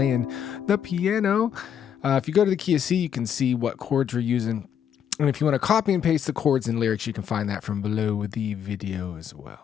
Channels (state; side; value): quieter; right; 8.7 dB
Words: the piano. If you go to the key of C, you can see what chords we're using. And if you want to copy and paste the chords and lyrics, you can find that from below the video as